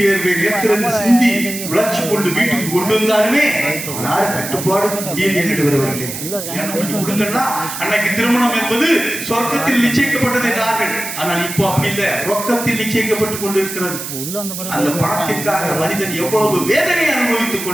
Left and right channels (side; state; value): right; noise; hiss, 7 dB below the sound